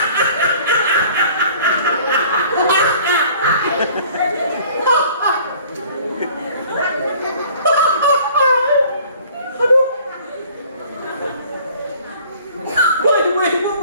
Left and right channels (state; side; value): inverted; both; correlation -0.52